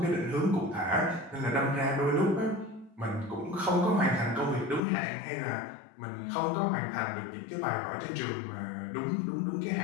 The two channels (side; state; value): right; drops out; at 4.8 s